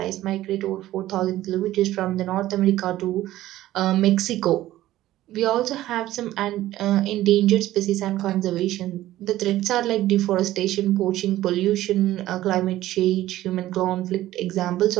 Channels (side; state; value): left; quieter; 14.8 dB